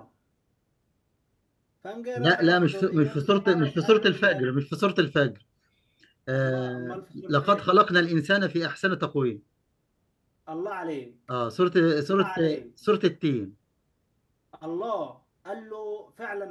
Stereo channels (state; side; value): identical; both; correlation 1.00